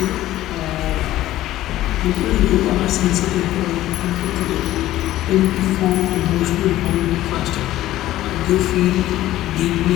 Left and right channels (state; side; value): quieter; right; 14.8 dB